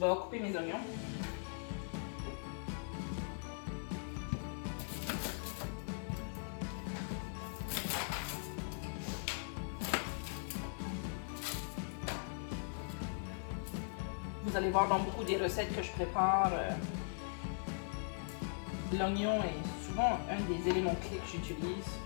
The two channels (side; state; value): right; silent; 51 dB below the other